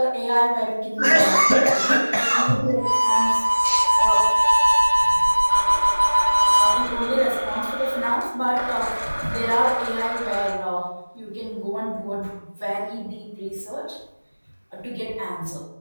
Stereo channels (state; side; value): inverted; both; correlation -1.00